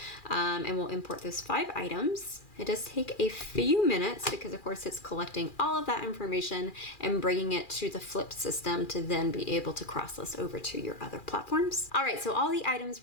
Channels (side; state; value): right; late; 2.4 ms